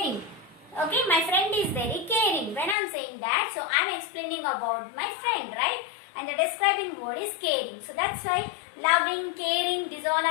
Okay, my friend is very caring. When I'm saying that, so I'm explaining about my friend, right? And the describing word is caring. So that's why loving, caring, these all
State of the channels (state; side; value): drops out; right; at 2.8 s